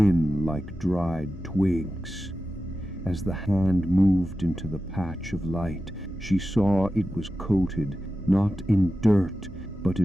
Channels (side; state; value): both; normal; correlation 0.93